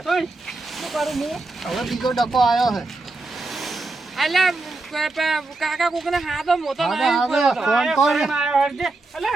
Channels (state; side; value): quieter; left; 3.2 dB